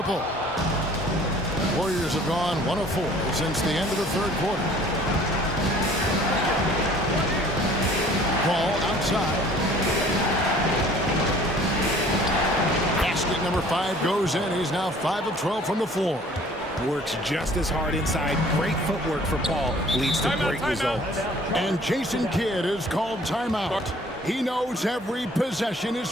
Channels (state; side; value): normal; both; correlation 0.52